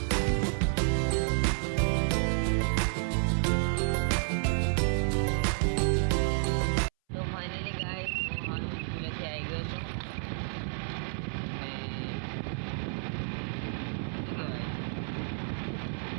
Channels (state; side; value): silent; left; 57 dB below the other